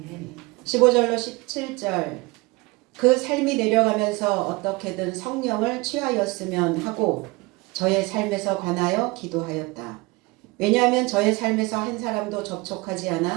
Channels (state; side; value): quieter; left; 24.2 dB